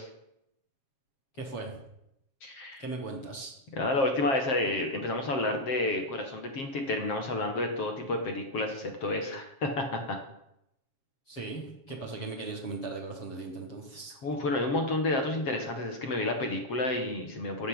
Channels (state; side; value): late; right; 7.1 ms